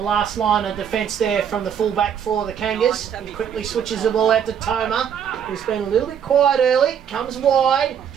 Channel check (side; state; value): left; quieter; 8.3 dB